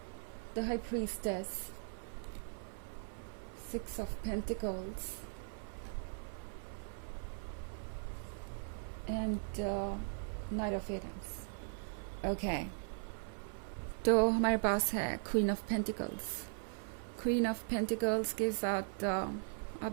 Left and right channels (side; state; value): left; silent; 52 dB below the other